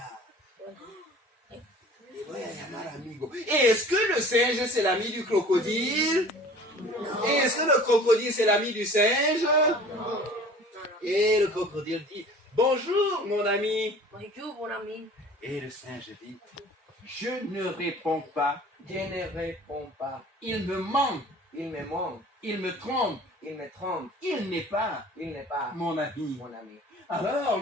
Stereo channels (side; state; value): both; normal; correlation 0.45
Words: Le voy a llamar amigo. Et est-ce que le singe c'est l'ami du crocodile? Et est-ce que le crocodile c'est l'ami du singe? Et le crocodile dit bonjour mon ami. Et le singe dit je ne réponds pas. Je ne réponds pas. Il me ment. Il me ment. Il me trompe. Il me trompe. Il n'est pas Il n'est pas mon ami. mon ami. Alors